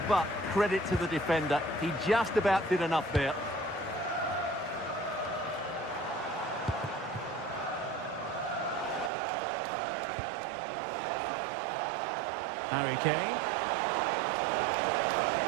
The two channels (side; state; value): left; drops out; at 9.1 s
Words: but credit to the defender. He just about did enough there. Harry Kane.